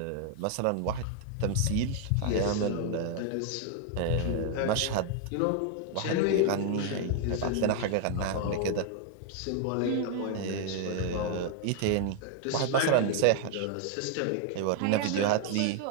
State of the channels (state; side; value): different; both; correlation 0.00